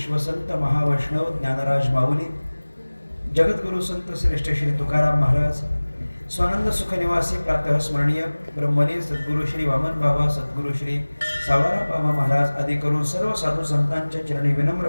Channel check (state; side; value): inverted; both; correlation -1.00